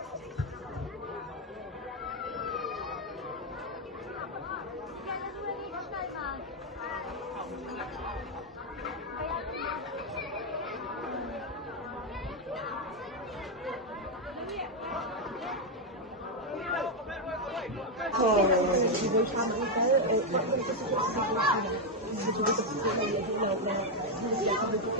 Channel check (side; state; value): both; normal; correlation 0.02